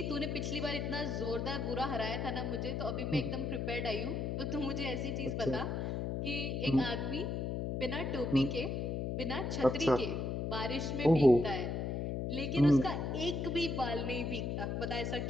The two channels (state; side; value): noise; left; hum, 1 dB below the sound